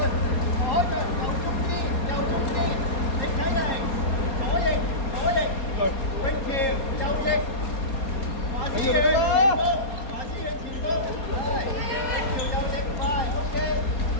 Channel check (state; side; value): late; right; 4.3 ms